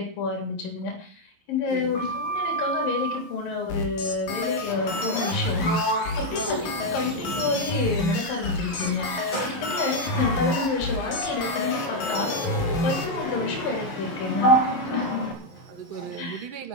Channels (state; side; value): late; right; 11 ms